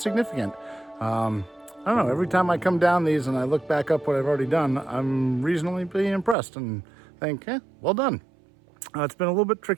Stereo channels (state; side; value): drops out; left; at 6.4 s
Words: I don't know, every time I come down these and I look back up what I've already done, I'm reasonably impressed and think, well done. It's been a little bit